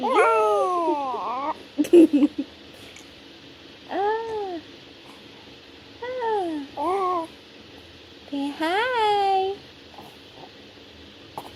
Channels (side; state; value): both; identical; correlation 1.00